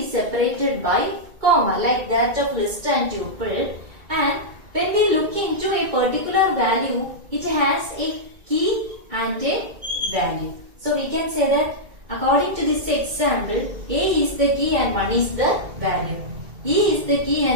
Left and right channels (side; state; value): left; late; 2.2 ms